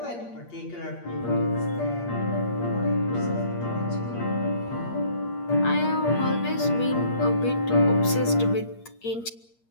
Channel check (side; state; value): right; late; 8.6 ms